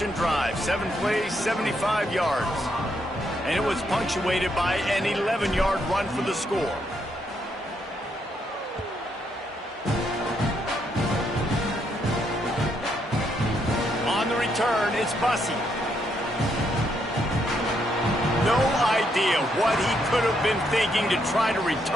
drive. 7 plays, 75 yards. And it was punctuated by an 11-yard run for the score. On the return, it's Bussey. No idea what he could have been thinking to try to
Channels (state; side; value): normal; both; correlation 0.76